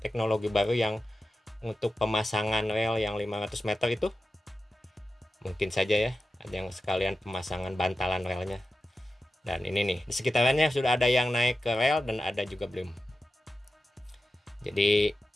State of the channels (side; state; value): both; normal; correlation 0.93